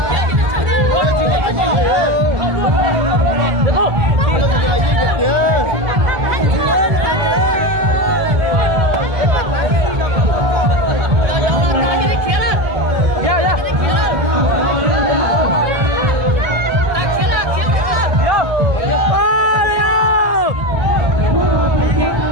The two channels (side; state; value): left; late; 1.7 ms